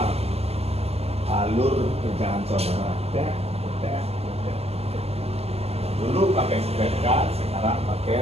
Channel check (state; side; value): late; left; 0.29 ms